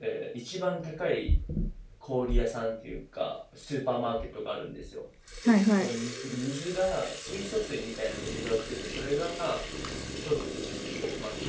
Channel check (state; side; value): identical; both; correlation 1.00